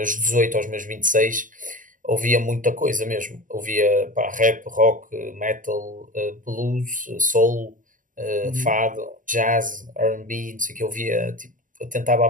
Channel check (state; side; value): late; left; 0.38 ms